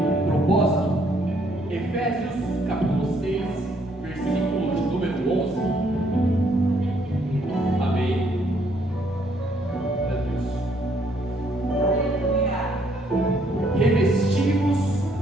propósito. Efésios capítulo 6, versículo de número 11. Amém. Meu Deus. Revestivos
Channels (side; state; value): both; normal; correlation 0.68